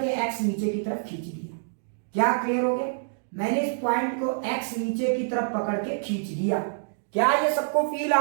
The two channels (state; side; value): silent; left; digital silence